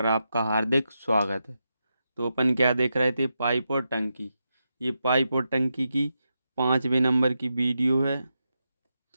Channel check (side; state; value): both; inverted; correlation -0.87